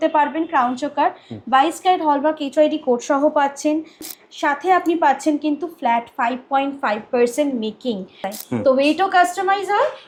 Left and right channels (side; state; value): both; identical; correlation 1.00